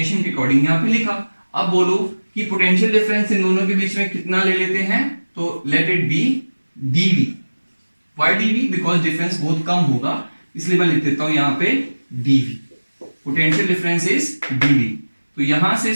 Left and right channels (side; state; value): both; inverted; correlation -1.00